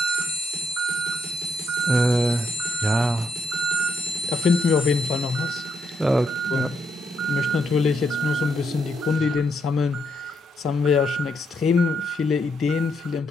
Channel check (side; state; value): both; normal; correlation 0.76